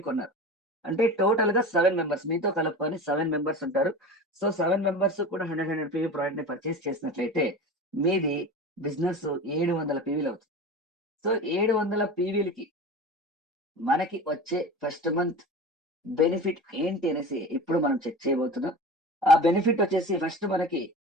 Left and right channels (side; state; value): both; normal; correlation 0.33